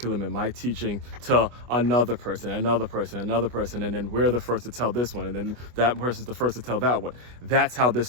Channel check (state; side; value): late; left; 24 ms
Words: and my teaching to another person. And then we're the first to tell this one. And then that person's the first to tell that one. That's how this